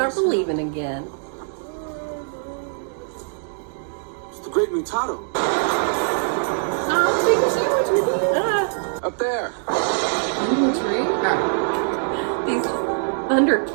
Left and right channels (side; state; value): left; silent; 64 dB below the other